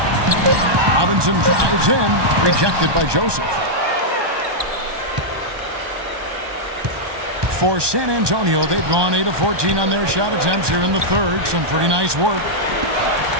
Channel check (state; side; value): late; left; 1.2 ms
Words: Robinson drives in. Rejected by Joseph. For San Antonio, they've gone 8 of 14 on their shot attempts here in the third. Some pretty nice work.